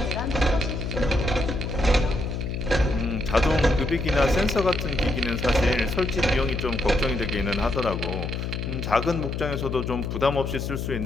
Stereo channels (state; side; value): noise; left; hum, 3 dB below the sound